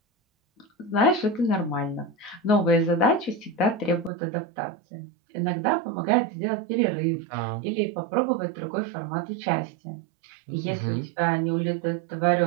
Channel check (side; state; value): left; drops out; at 4.1 s